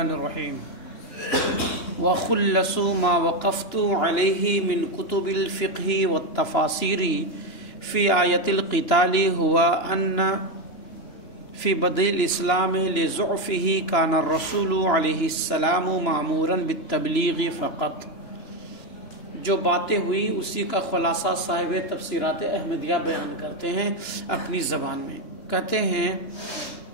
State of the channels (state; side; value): late; right; 2.9 ms